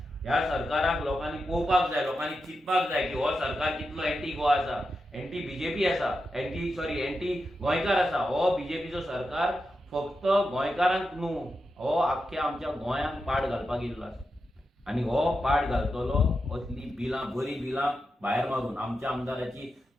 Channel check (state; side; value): normal; both; correlation 0.88